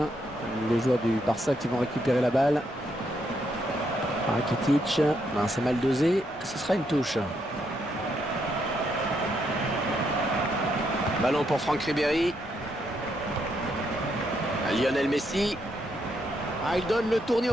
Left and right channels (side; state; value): both; normal; correlation 0.77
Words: Les joueurs du Barça qui vont récupérer la balle. Rakitic. Ben, c'est mal dosé. Ce sera une touche. Ballon pour Franck Ribéry. Lionel Messi. Ah, il donne le tournis